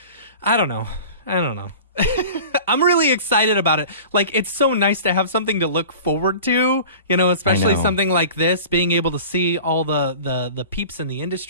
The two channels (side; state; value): both; inverted; correlation -0.39